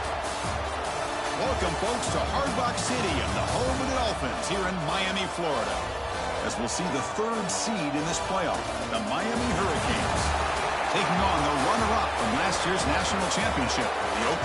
Welcome, folks, to Hard Rock City and the home of the Dolphins here in Miami, Florida, as we'll see the 3rd seed in this playoff, the Miami Hurricanes, taking on the runner-up from last year's national championship, the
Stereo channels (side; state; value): both; identical; correlation 1.00